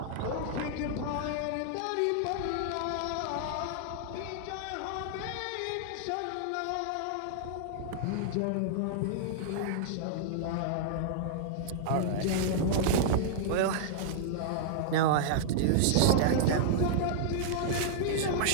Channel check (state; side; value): different; both; correlation -0.01